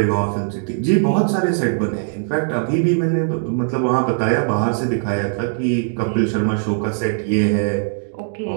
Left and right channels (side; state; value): left; silent; digital silence